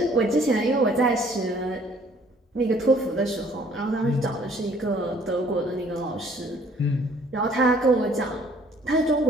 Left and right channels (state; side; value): normal; both; correlation 0.58